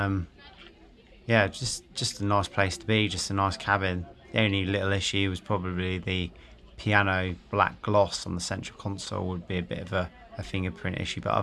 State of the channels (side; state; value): both; identical; correlation 1.00